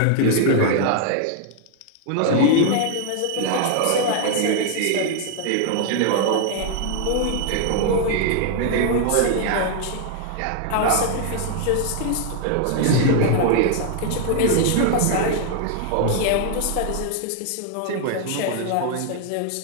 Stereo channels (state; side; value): different; both; correlation 0.00